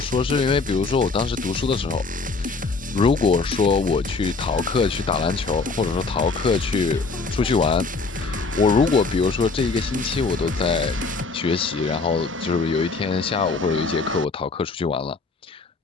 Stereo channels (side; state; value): right; quieter; 4.1 dB